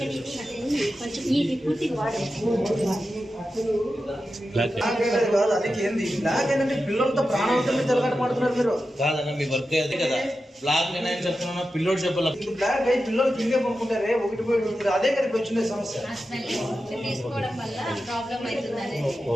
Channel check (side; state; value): both; normal; correlation 0.91